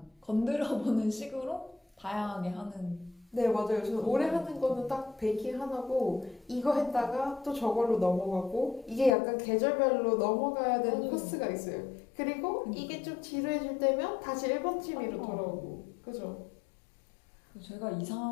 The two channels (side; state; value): right; drops out; at 9.2 s